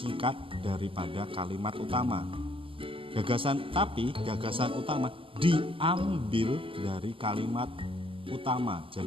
daripada kalimat utama. Gagasan utama diambil dari kalimat utama.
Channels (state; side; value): late; left; 0.25 ms